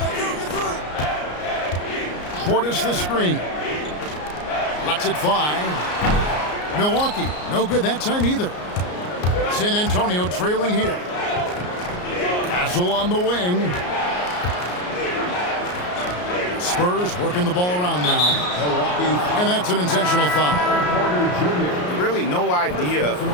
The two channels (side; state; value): right; late; 34 ms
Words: Portis the screen. Lets it fly. Milwaukee, no good that time either. San Antonio trailing here. Castle on the wing. Spurs working the ball around now. And that's an intentional foul. Really no idea